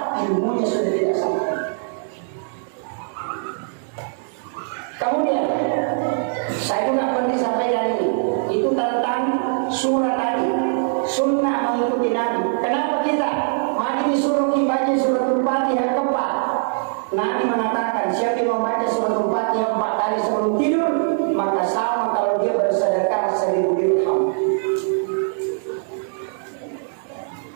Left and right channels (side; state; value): left; silent; digital silence